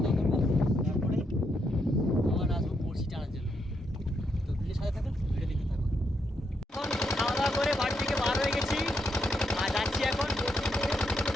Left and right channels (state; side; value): normal; both; correlation 0.79